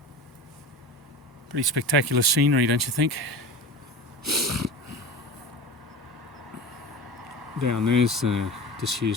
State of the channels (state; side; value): normal; both; correlation 0.32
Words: Pretty spectacular scenery, don't you think? Down there's a